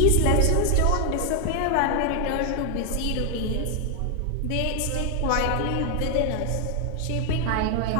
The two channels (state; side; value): different; both; correlation 0.00